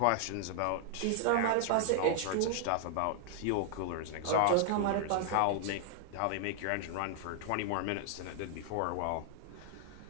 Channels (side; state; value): both; different; correlation 0.00